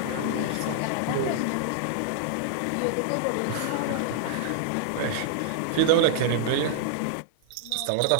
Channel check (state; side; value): different; both; correlation -0.01